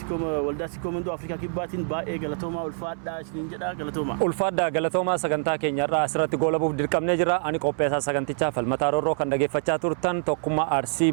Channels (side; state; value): left; silent; 61 dB below the other